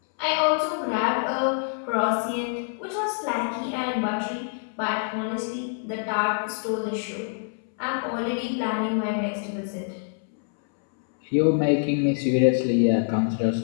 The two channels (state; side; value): silent; right; 61 dB below the other